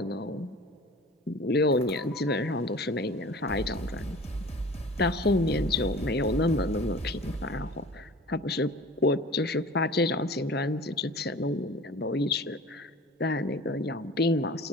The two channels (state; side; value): normal; both; correlation 0.41